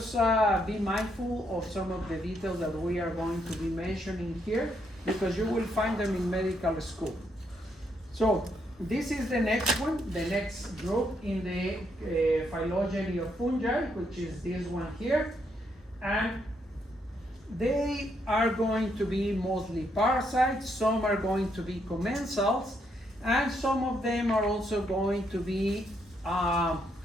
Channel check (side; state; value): both; normal; correlation 0.76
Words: be mindful of some of the details that we are going to be mentioning here because you will find them in medical school. So this is the next one, the next group in the phylogeny of fungi, which is this one here. And they are going to be mostly parasites, some are going to be commensals, and some of them are also going to be